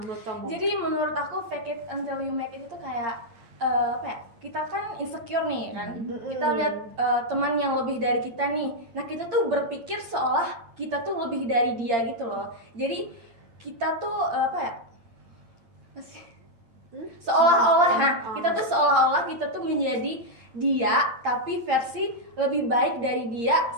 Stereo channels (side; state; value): left; late; 8.7 ms